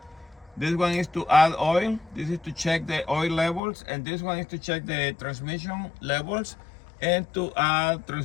This one is to add oil. This is to check the oil levels, and this one is to check the transmission levels and to add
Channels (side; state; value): right; drops out; at 3.6 s